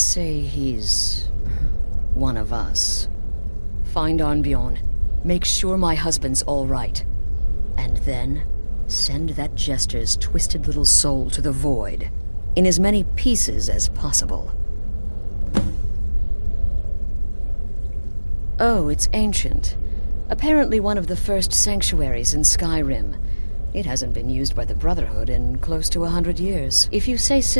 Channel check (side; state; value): both; inverted; correlation -1.00